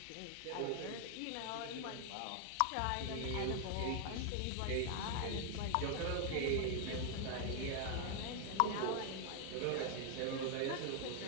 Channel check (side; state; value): both; different; correlation 0.00